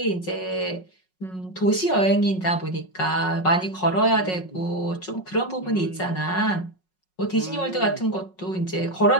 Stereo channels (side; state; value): right; late; 5.4 ms